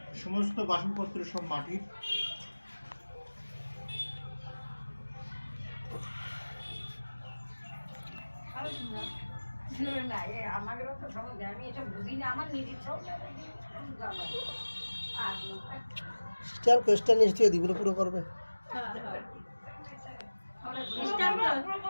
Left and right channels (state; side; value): inverted; both; correlation -1.00